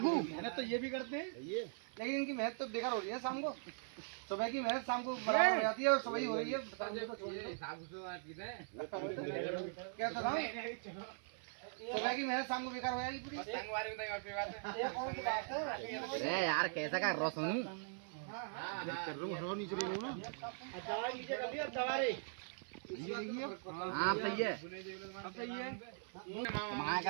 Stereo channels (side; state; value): left; silent; 50 dB below the other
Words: मेहनत तो ये भी करते हैं लेकिन इनकी मेहनत तो बेकार हो रही है। शाम को सुबह की मेहनत शाम को बराबर हो जाती है और सुबह ही हो रही है। क्या था सुबह की मेहनत शाम को बेकार हो जाएगी पूरी। अरे यार कैसा का रोशनी नीचे हाँ सही है कमाया